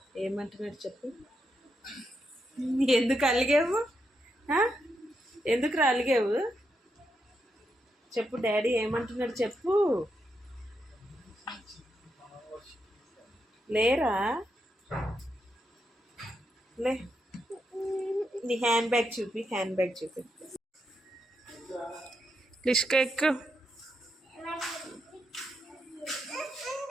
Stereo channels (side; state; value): both; normal; correlation 0.83